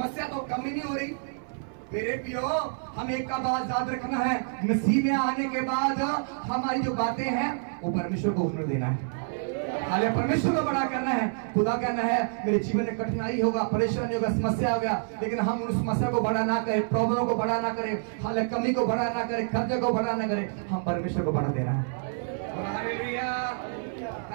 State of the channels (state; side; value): silent; left; 59 dB below the other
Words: तो कम ही नहीं हो रही। मेरे प्रियो, हम एक का बात याद रखना है, मसीह में आने के बाद हमारी जो बातें हैं वो परमेश्वर को हुनर देना है। हाले परमेश्वर को बड़ा करना है। खुदा कहना है मेरे जीवन में कठिनाई होगा, परेशानी होगा, समस्या होगा, लेकिन हम उस समस्या को बड़ा ना करें, प्रॉब्लम को बड़ा ना करें, हाले कमी को बड़ा ना करें, खर्चे को बड़ा ना करें, हम परमेश्वर को बड़ा देना है। Hallelujah,